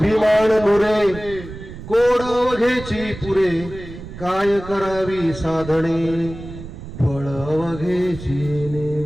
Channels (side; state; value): right; noise; rumble, 13 dB below the sound